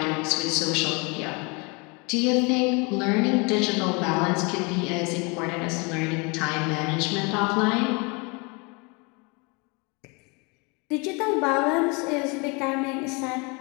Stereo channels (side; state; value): right; quieter; 30.1 dB